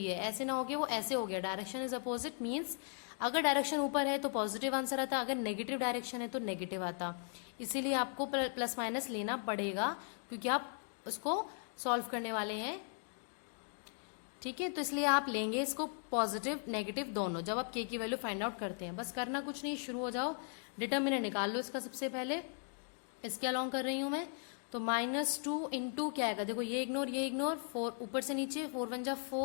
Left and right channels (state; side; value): silent; right; 53 dB below the other